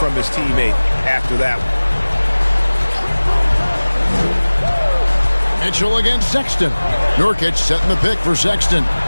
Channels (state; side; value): inverted; both; correlation -1.00